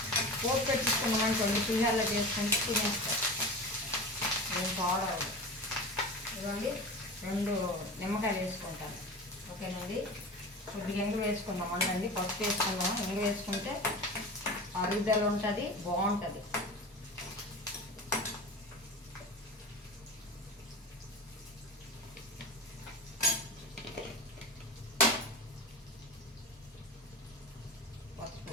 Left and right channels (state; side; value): normal; both; correlation 0.31